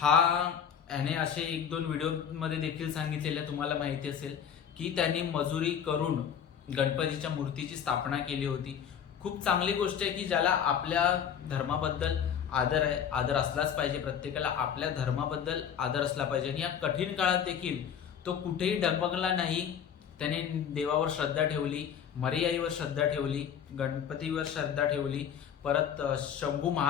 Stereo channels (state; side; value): quieter; right; 8.3 dB